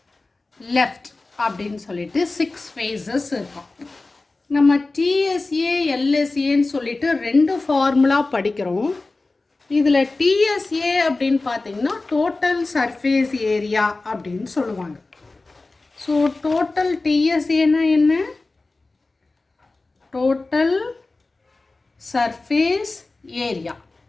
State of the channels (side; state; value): right; quieter; 3.4 dB